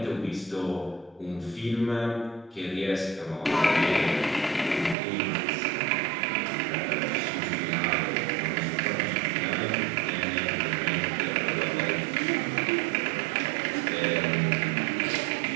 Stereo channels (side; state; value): left; drops out; at 5.0 s